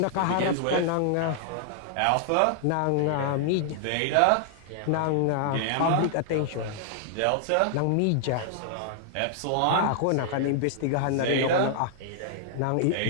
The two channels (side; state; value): both; different; correlation -0.01